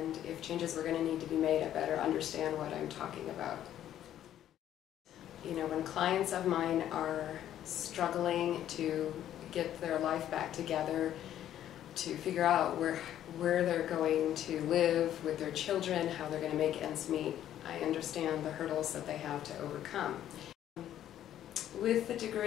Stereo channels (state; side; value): quieter; right; 11.4 dB